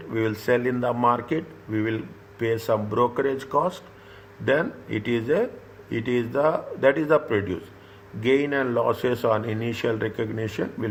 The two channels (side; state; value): both; identical; correlation 1.00